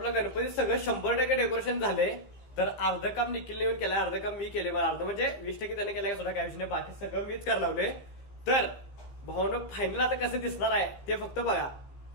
गणपती सगळं 100% डेकोरेशन झाले. तर अर्ध काम निखिलने येऊन केलंय, अर्ध काम मी केले. अर्ध म्हणजे 20% त्याने केलंय, सुद्धा काय विषय नाही, बाकी सगळं मीच करायला लावले. तर भाऊनं फायनल आता कसं दिसणार आहे ते फक्त बघा,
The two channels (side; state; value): right; late; 15 ms